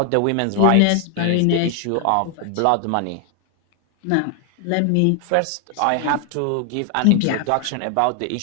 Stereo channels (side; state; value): both; different; correlation 0.00